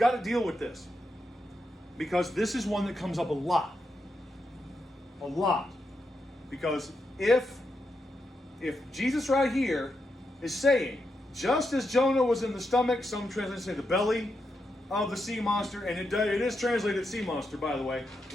to deal with this, because this is one that comes up a lot. A lot. Because if Jesus right here is saying, just as Jonah was in the stomach, some translations say the belly of the sea monster, and it is translated sea monster, by the way,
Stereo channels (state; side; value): normal; both; correlation 0.84